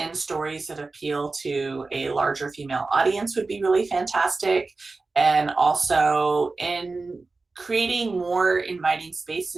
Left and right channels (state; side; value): quieter; left; 3.7 dB